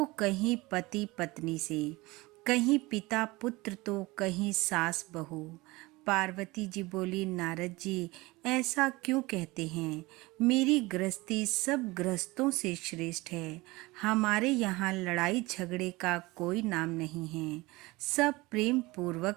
कहीं पति पत्नी से, कहीं पिता पुत्र तो कहीं सास बहू। पार्वती जी बोली, नारद जी, ऐसा क्यों कहते हैं? मेरी गृहस्थी सब गृहस्थों से श्रेष्ठ है। हमारे यहाँ लड़ाई झगड़े का कोई नाम नहीं है, सब प्रेम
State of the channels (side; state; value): left; quieter; 21.9 dB